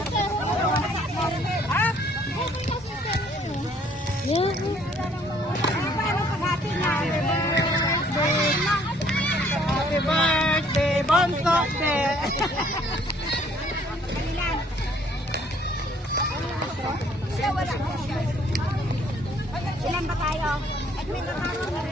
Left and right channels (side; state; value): both; normal; correlation 0.62